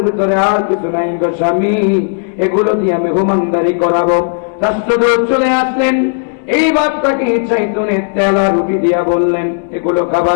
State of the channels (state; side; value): silent; right; digital silence